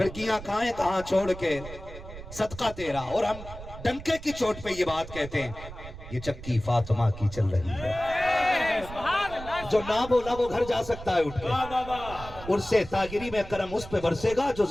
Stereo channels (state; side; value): noise; right; rumble, 13 dB below the sound